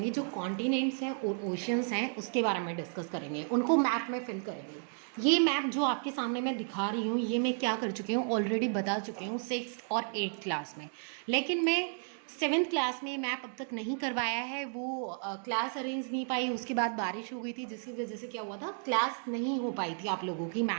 जो कॉन्टिनेंट्स हैं और ओशियंस हैं उसके बारे में डिस्कस करेंगे, उनको मैप में फिल करेंगे। ये मैप जो आपके सामने मैं दिखा रही हूँ, ये मैं क्या कर चुकी हूँ, ऑलरेडी बता चुकी हूँ 6th और 8th क्लास में। लेकिन मैं 7th क्लास में मैप अब तक नहीं करवाया है, वो क्लास अरेंज नहीं पाई। उसके बाद बारिश हो गई थी, जिसकी वजह से क्या हुआ था, क्लास नहीं हो पाई थी आप लोगों की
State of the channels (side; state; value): left; silent; 56 dB below the other